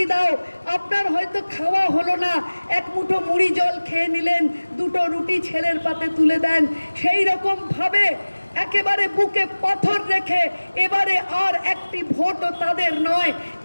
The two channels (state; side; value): inverted; both; correlation -1.00